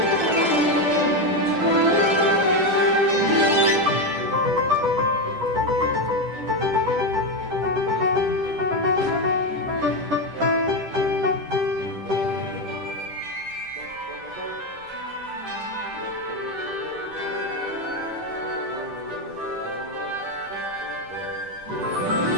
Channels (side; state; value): left; late; 10 ms